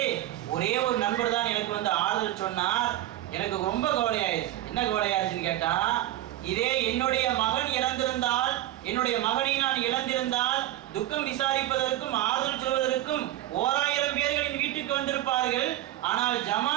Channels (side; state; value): left; quieter; 14.4 dB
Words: ஒரே ஒரு நண்பர் தான் எனக்கு வந்து ஆறுதல் சொன்னார். எனக்கு ரொம்ப கவலையாயிருச்சு. என்ன கவலையாயிருச்சுன்னு கேட்டா, இதே என்னுடைய மகன் இறந்திருந்தால், என்னுடைய மகனை நான் இழந்திருந்தால் துக்கம் விசாரிப்பதற்கும் ஆறுதல் சொல்வதற்கும் 1000 பேர்களின் வீட்டுக்கு வந்திருப்பார்கள். ஆனால்